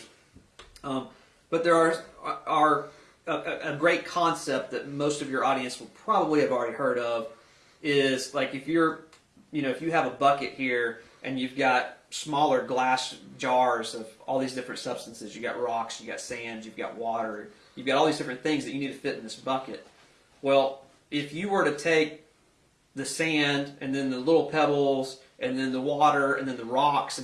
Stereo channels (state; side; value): identical; both; correlation 1.00